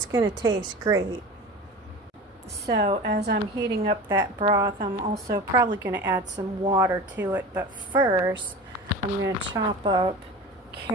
going to taste great. So as I'm heating up that broth, I'm also probably going to add some water to it. But first, I'm going to chop up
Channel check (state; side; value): normal; both; correlation 0.33